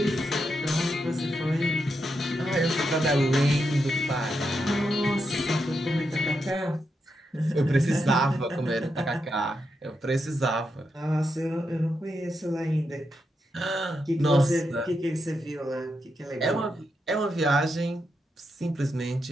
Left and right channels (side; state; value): both; normal; correlation 0.84